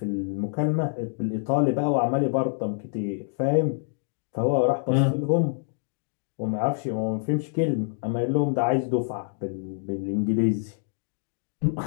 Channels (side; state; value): right; silent; digital silence